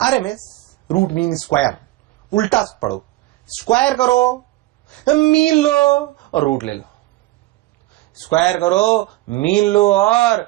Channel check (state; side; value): quieter; left; 18.0 dB